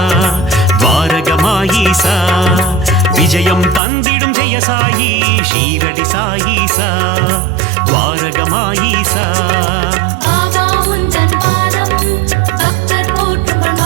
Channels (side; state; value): left; drops out; at 3.8 s